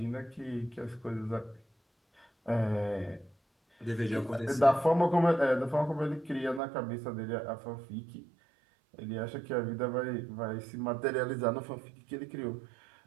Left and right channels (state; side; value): drops out; left; at 6.6 s